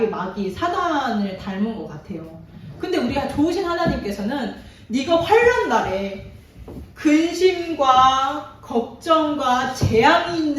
마귀 사단을 닮은 것 같아요. 근데 우리가 좋으신 하나님께서는 네가 환난 날에 근심과 걱정과 재앙이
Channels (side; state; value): both; identical; correlation 1.00